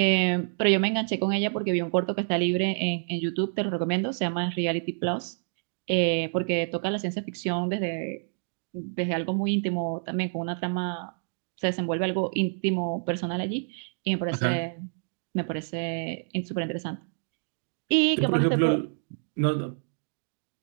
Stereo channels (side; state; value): left; silent; digital silence